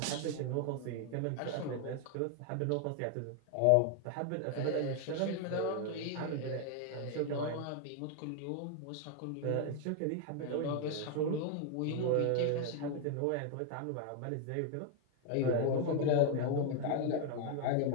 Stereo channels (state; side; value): different; both; correlation 0.00